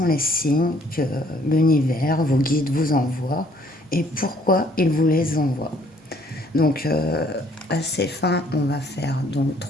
les signes que l'univers, vos guides vous envoient et pourquoi ils vous les envoient. Donc à ces fins, on va faire donc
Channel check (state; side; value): normal; both; correlation 0.62